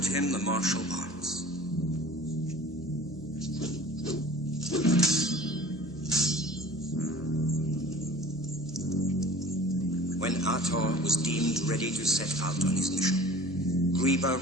him the martial arts. When Ator was deemed ready to set out on his mission, Griba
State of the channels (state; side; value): noise; right; hum, 21 dB below the sound